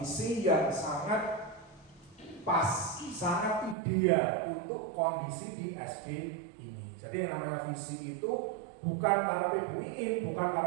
yang sangat pas, sangat ideal untuk kondisi di SD ini. Jadi yang namanya visi itu bukan karepe Bu Iin, bukan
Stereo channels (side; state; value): left; drops out; at 3.8 s